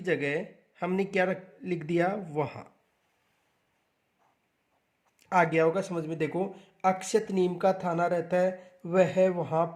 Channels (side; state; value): both; identical; correlation 1.00